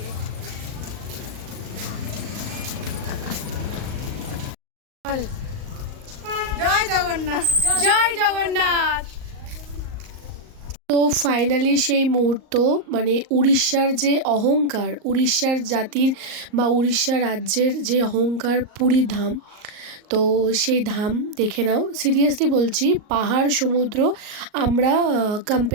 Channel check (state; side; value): late; left; 38 ms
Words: জয় জগন্নাথ। জয় জগন্নাথ। তো ফাইনালি সেই মুহূর্ত, মানে উড়িষ্যার যে অহংকার, উড়িষ্যার জাতির বা উড়িষ্যা রাজ্যের যে অহংকার পুরী ধাম, তো সেই ধাম দেখে নাও। সিরিয়াসলি বলছি, পাহাড় সমুদ্র আমরা